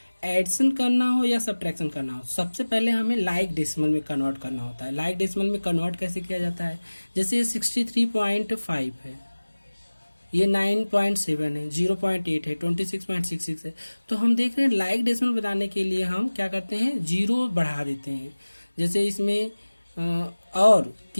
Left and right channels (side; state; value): both; inverted; correlation -1.00